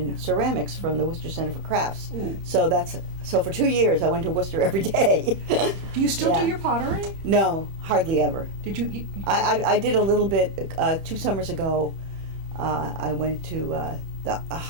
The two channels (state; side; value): late; left; 31 ms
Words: ceramics from the Worcester Center for Crafts. So for 2 years, I went to Worcester every day. Do you still Yeah. do your pottery? No, hardly ever. Did you? I did a little bit 2 summers ago. I went to